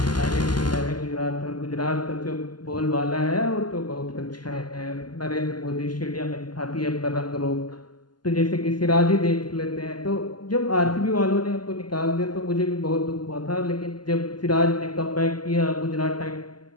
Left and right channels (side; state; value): right; late; 0.71 ms